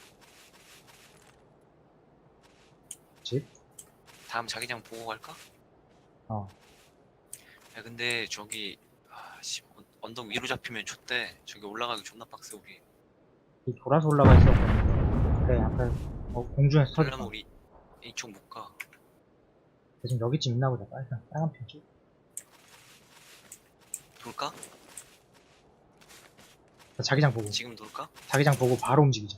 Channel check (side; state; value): both; identical; correlation 1.00